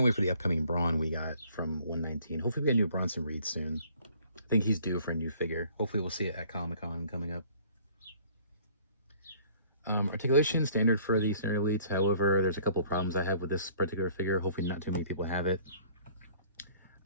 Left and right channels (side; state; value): both; inverted; correlation -0.55